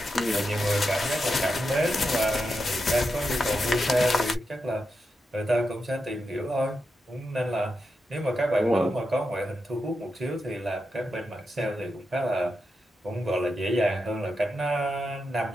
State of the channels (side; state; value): both; normal; correlation 0.87